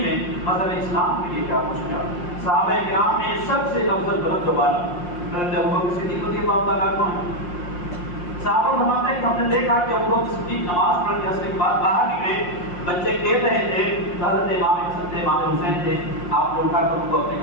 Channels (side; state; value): right; late; 5.6 ms